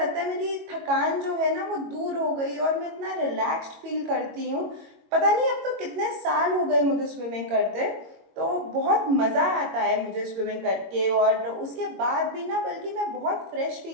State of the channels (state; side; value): late; left; 22 ms